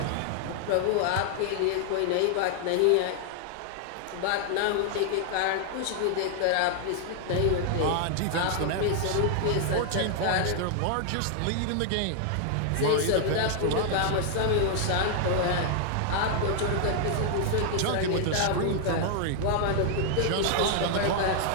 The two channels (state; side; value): different; both; correlation 0.00